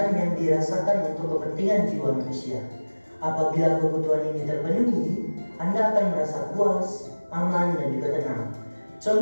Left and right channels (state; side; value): inverted; both; correlation -1.00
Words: yang dirasakan untuk kepentingan jiwa manusia. Apabila kebutuhan ini terpenuhi, Anda akan merasa puas, aman, dan juga tenang.